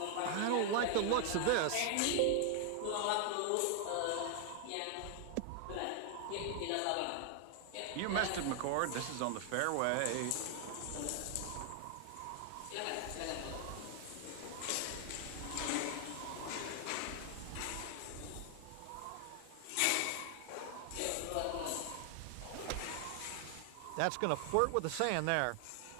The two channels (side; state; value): both; different; correlation 0.00